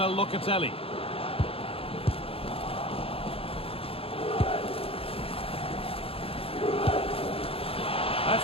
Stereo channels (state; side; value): late; right; 0.27 ms